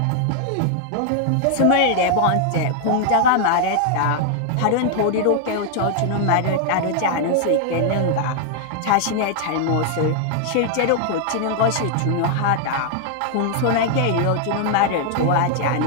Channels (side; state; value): both; different; correlation 0.00